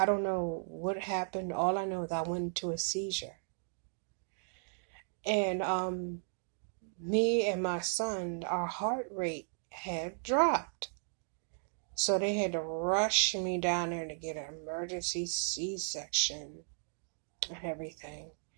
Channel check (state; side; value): silent; left; digital silence